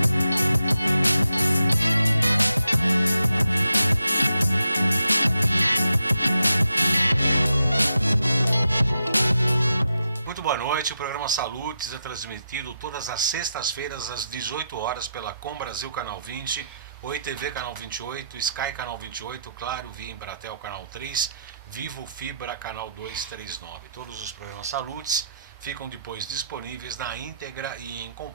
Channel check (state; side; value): inverted; both; correlation -0.84